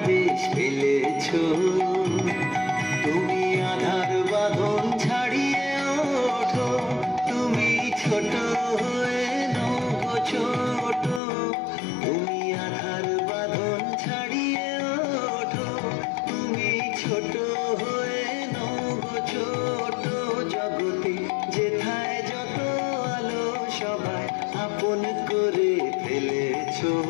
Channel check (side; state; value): right; drops out; at 11.2 s